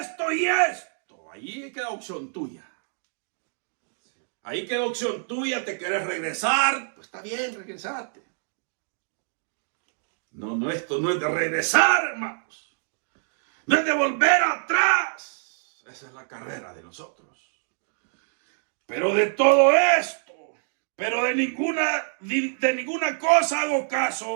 y esto. Ahí queda opción tuya. Ahí queda opción tuya. ¿Te quieres regresar? Pues está bien, regresate. No, esto no es de regresar, hermanos. No es de volver atrás. Esa es la carrera de nosotros. Pero de todo esto, pero de ninguna cosa hago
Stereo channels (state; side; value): silent; left; 61 dB below the other